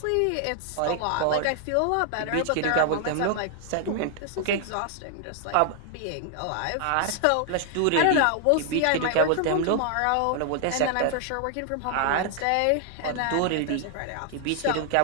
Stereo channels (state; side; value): different; both; correlation 0.00